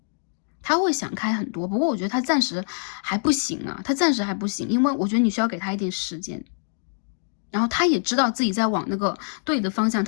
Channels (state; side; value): silent; right; digital silence